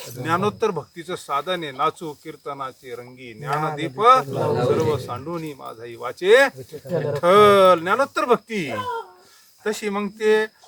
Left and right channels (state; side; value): identical; both; correlation 1.00